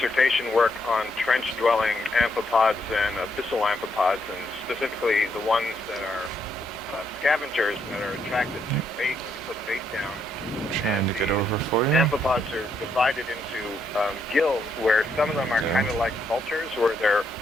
work on trench-dwelling amphipods and abyssal amphipods, and specifically the ones that are scavengers that are attracted to bait when you put bait down. Trying to get over for you. Amphipods are divided into guilds, where some of them are kind of like vultures, where they're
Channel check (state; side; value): normal; both; correlation 0.76